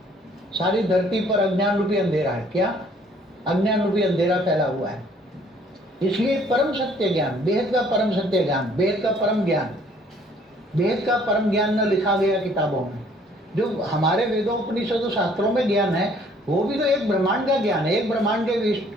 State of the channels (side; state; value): both; normal; correlation 0.60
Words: सारी धरती पर अज्ञान रूपी अंधेरा है। क्या? अज्ञान रूपी अंधेरा फैला हुआ है। इसलिए परम सत्य ज्ञान, बेहद का परम सत्य ज्ञान, बेहद का परम ज्ञान, वेद का परम ज्ञान न लिखा गया किताबों में। जो हमारे वेदों उपनिषदों शास्त्रों में ज्ञान है वो भी तो एक ब्रह्मांड का ज्ञान है, एक ब्रह्मांड के